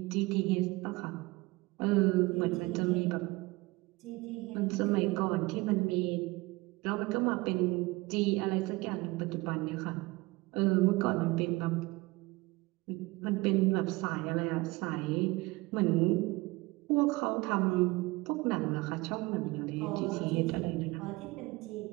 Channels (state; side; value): quieter; left; 22.5 dB